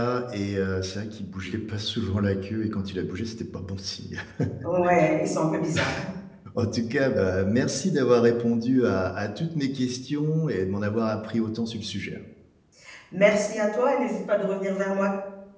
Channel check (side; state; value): both; identical; correlation 1.00